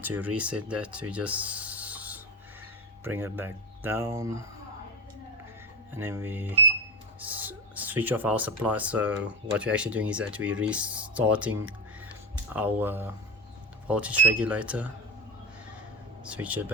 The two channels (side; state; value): both; normal; correlation 0.18